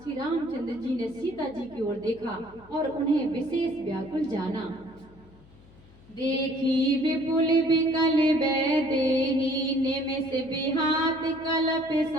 श्री रामचंद्र जी ने सीता जी की ओर देखा और उन्हें विशेष व्याकुल जाना। देखी विपुल विकल वैदेही, निमिष विहात कल्प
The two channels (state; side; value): noise; left; hum, 25 dB below the sound